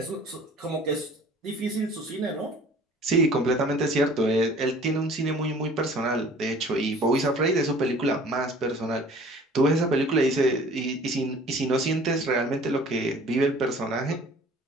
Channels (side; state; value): both; normal; correlation 0.49